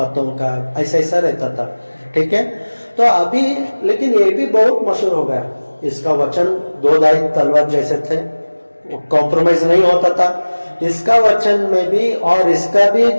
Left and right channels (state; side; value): inverted; both; correlation -1.00